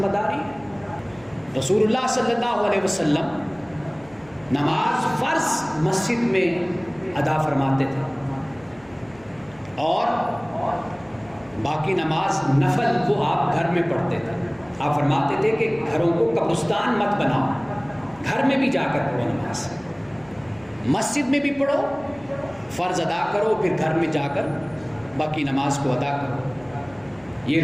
داری ہے۔ رسول اللہ صلی اللہ علیہ وسلم نماز فرض مسجد میں ادا فرماتے تھے، اور باقی نماز نفل وہ آپ گھر میں پڑھتے تھے. آپ فرماتے تھے کہ گھروں کو قبرستان مت بناؤ، گھر میں بھی جا کر پڑھو نماز، مسجد میں بھی پڑھو، فرض ادا کرو، پھر گھر میں جا کر باقی نماز کو ادا کرو. یہ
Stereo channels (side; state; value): left; noise; hum, 26 dB below the sound